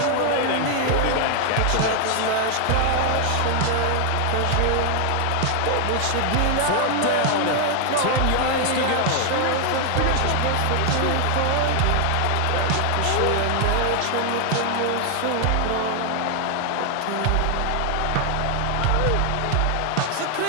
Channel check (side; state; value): both; different; correlation 0.00